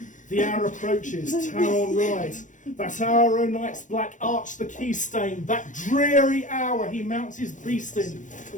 The hour approaches, tower on ride. That hour o' night's black arch the key stain. That dreary hour he mounts his beast in.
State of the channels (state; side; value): late; right; 0.37 ms